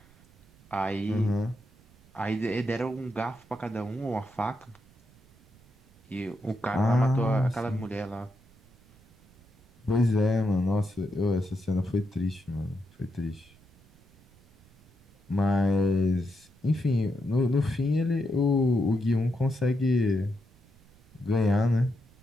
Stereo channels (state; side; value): noise; right; rumble, 28 dB below the sound